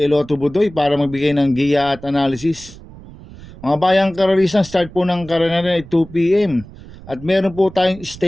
Eloto Budoy, para magbigay ng giya at analysis. Mga bayang karerista, start po ng karera ay 2 p.m. At meron po tayong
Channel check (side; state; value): right; noise; rumble, 18 dB below the sound